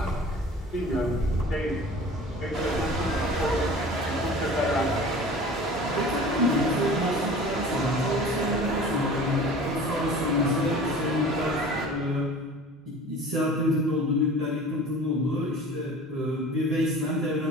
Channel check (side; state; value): both; normal; correlation 0.41